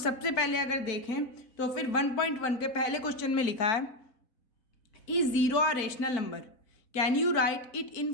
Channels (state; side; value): late; right; 4.0 ms